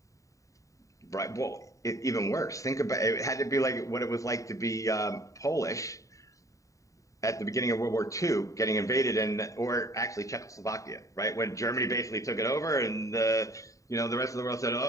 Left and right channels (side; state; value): right; late; 0.16 ms